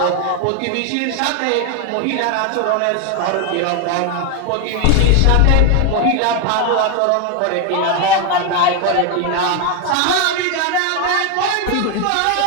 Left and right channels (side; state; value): both; different; correlation 0.01